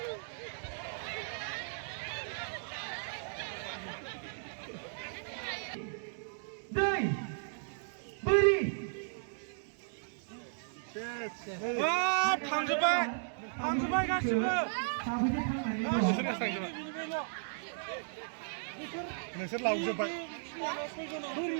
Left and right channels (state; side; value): silent; left; digital silence